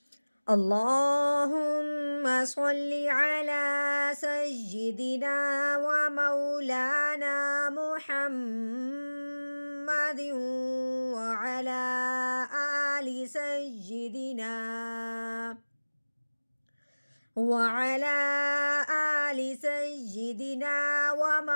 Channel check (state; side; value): inverted; both; correlation -1.00